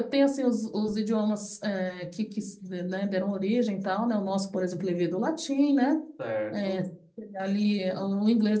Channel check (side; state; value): both; identical; correlation 1.00